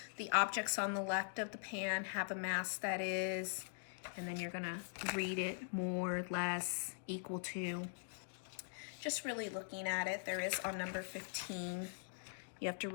The objects on the left of the pan have a mass that is, and then you're gonna read it, more, less, equal to. Just really looking at it. There is on number 15. You have to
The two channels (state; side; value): silent; right; digital silence